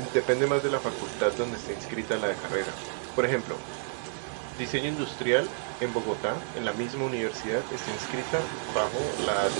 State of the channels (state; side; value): silent; left; digital silence